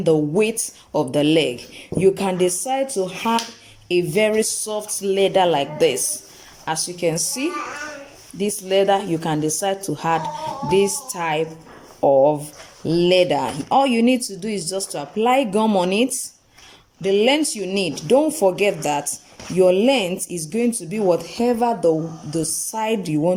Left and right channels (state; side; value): identical; both; correlation 1.00